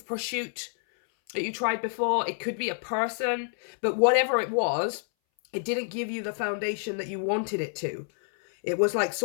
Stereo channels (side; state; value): right; silent; 59 dB below the other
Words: pursuit that you tried before. It could be a person. But whatever it was, it didn't give you the foundation that you wanted it to. It was like